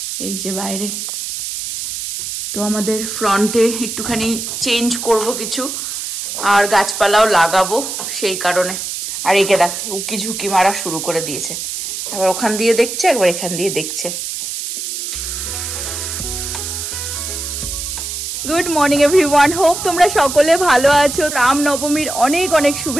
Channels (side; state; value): right; noise; hiss, 5 dB below the sound